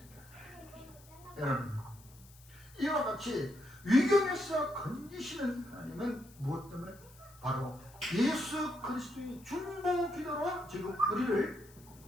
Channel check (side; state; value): left; noise; hiss, 24 dB below the sound